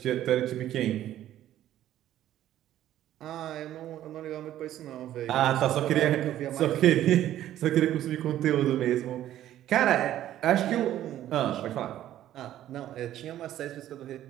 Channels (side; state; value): left; quieter; 12.6 dB